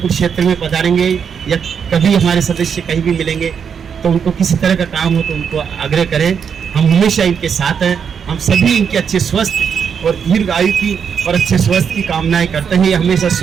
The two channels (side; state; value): left; quieter; 7.1 dB